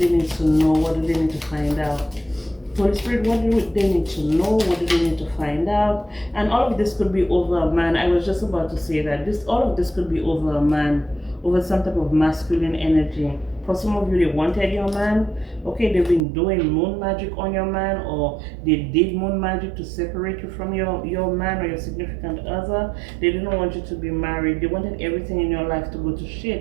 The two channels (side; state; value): left; drops out; at 16.2 s